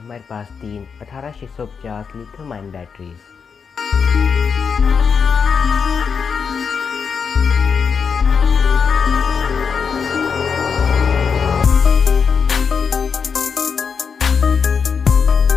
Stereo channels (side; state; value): right; quieter; 6.1 dB